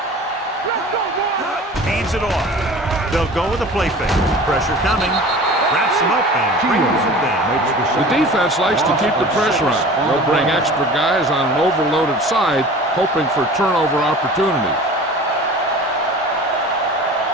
Let's go, boy. Hands it off. They'll go with a play fake. Pressure coming. Wraps him up and brings him down. The defense likes to keep the pressure on. They'll bring extra guys on an overloaded side, hoping for turnover opportunities.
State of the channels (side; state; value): both; normal; correlation 0.41